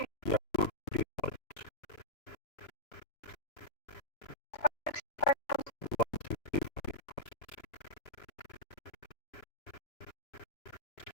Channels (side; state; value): right; late; 3.0 ms